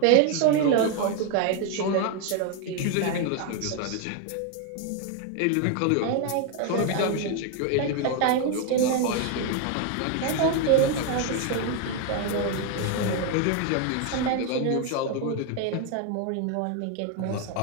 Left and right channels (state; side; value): different; both; correlation 0.01